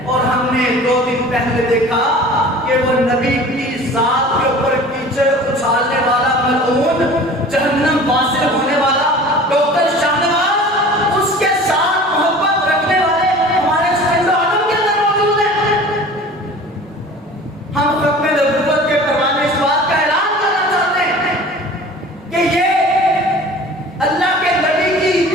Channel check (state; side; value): normal; both; correlation 0.42